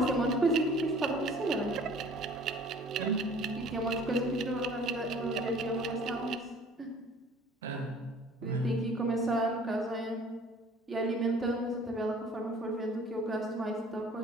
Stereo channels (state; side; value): normal; both; correlation 0.51